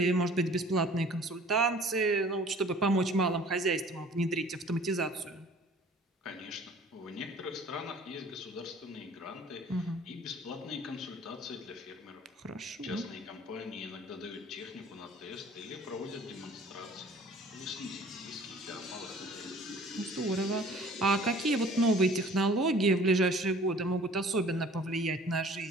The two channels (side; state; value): both; normal; correlation 0.51